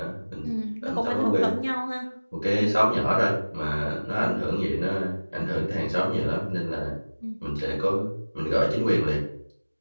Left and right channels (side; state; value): both; inverted; correlation -1.00